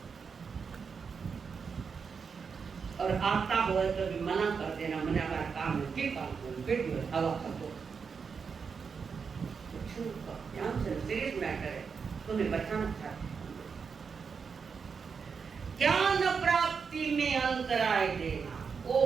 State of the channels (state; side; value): quieter; left; 5.8 dB